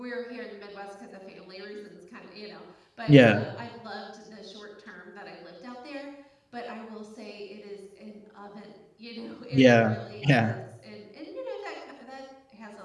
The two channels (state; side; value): identical; both; correlation 1.00